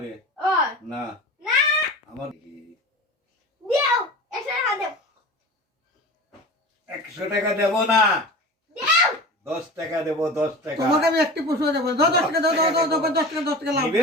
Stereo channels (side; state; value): both; normal; correlation 0.33